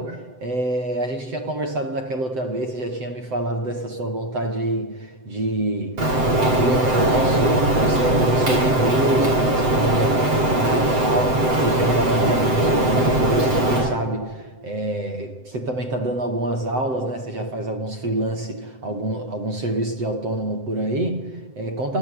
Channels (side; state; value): left; late; 7.8 ms